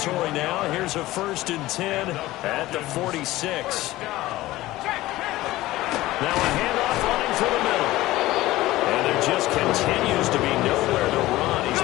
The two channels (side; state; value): right; quieter; 17.1 dB